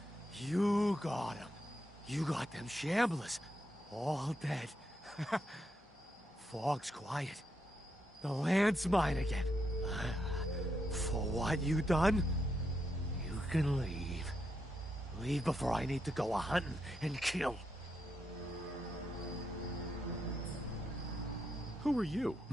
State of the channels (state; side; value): normal; both; correlation 0.81